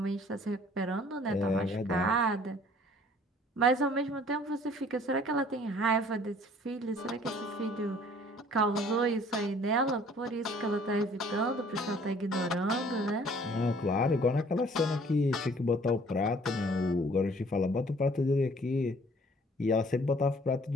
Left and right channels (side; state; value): both; normal; correlation 0.55